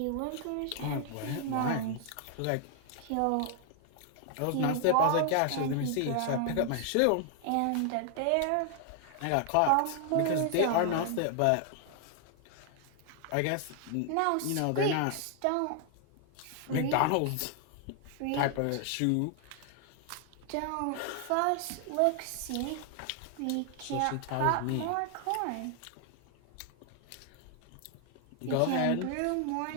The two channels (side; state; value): both; different; correlation 0.00